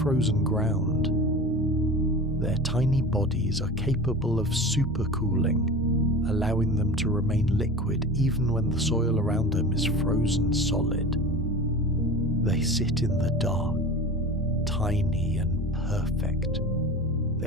ground. Their tiny bodies are capable of supercooling, allowing them to remain liquid even when the soil around them is frozen solid. They sit in the dark, tiny and perfect,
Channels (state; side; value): normal; both; correlation 0.33